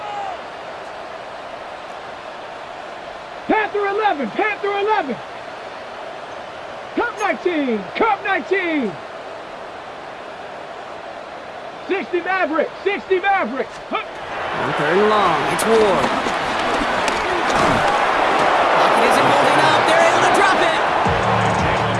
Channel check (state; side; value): identical; both; correlation 1.00